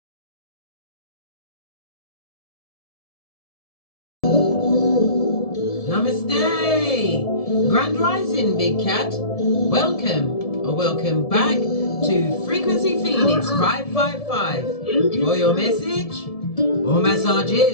Namaste! Grand Rising, Big Cat. Welcome back to Frequency Phoenix 555 for your message or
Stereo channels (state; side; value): late; right; 1.7 ms